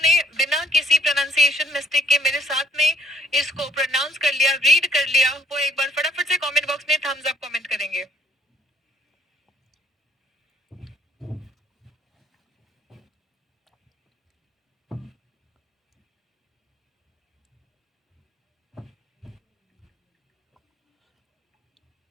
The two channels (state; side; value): normal; both; correlation 0.65